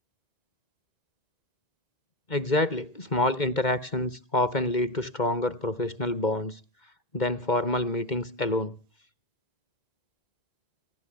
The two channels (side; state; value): right; late; 2.1 ms